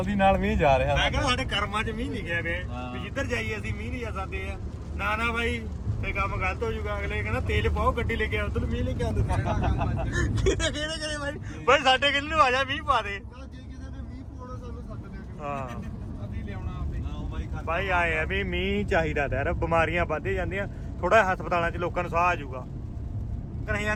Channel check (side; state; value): both; identical; correlation 1.00